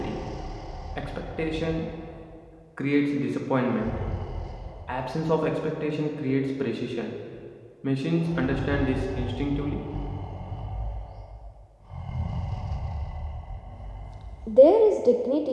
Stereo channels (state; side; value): identical; both; correlation 1.00